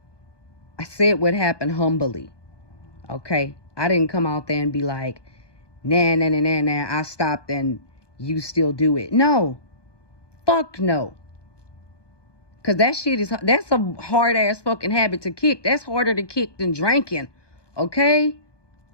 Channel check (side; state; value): right; late; 1.2 ms